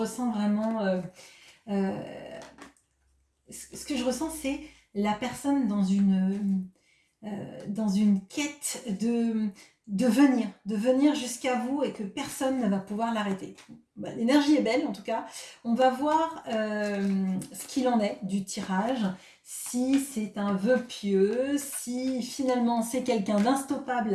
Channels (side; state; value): both; identical; correlation 1.00